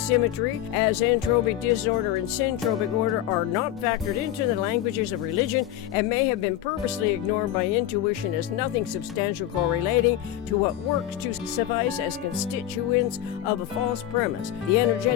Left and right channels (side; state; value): right; quieter; 12.4 dB